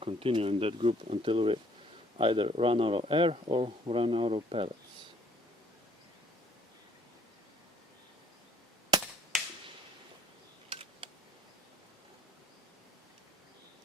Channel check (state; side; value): normal; both; correlation 0.62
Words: in that group until we either run out of air or run out of pellets.